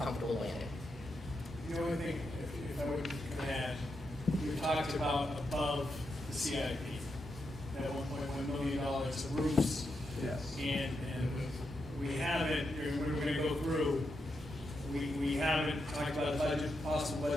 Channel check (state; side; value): normal; both; correlation 0.84